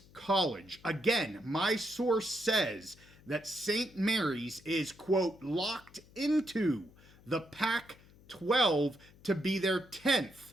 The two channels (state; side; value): noise; left; hum, 25 dB below the sound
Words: College. Again, my source says that St. Mary's is, quote, locked into the Pac-12 to be their 10th